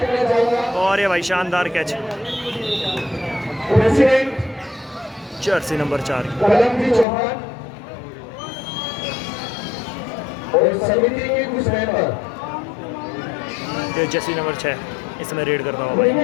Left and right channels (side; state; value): right; drops out; at 7.1 s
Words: चाहूँगा और ये भाई शानदार कैच, प्रेसिडेंट जर्सी नंबर 4 कलमजी चौहान और समिति के कुछ मेंबर जर्सी नंबर 6 इसमें रेड करता हुआ भाई।